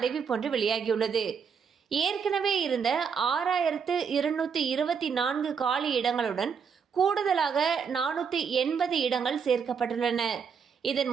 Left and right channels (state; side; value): quieter; left; 6.4 dB